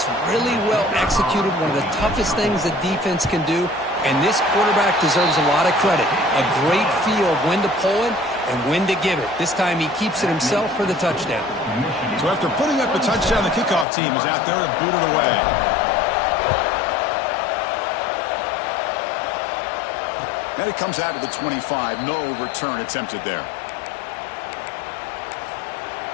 really well executed, one of the toughest things that defense can do. And this quarterback deserves a lot of credit. A great feel of when to pull it and when to give it. This time he keeps it himself for the touchdown. So after putting up the touchdown, the kickoff team is out there to boot it away. And it comes out to the 25. No return attempted there.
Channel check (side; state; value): right; drops out; at 13.9 s